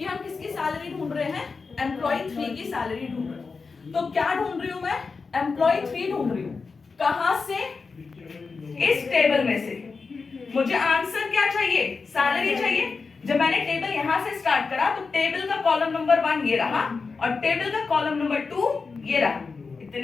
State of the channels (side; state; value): right; quieter; 4.6 dB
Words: हम किसकी सैलरी ढूंढ रहे हैं, एम्प्लॉय 3 की सैलरी ढूंढ रहे हैं। तो क्या ढूंढ रही हूं मैं, एम्प्लॉय 3 ढूंढ रही हूं। कहां से, इस टेबल में से। मुझे आंसर क्या चाहिए, सैलरी चाहिए। जब मैंने टेबल यहां से स्टार्ट करा तो टेबल का कॉलम नंबर 1 ये रहा और टेबल का कॉलम नंबर 2 ये रहा।